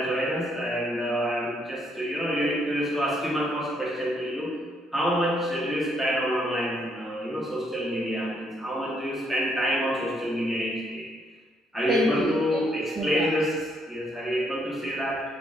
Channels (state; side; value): normal; both; correlation 0.72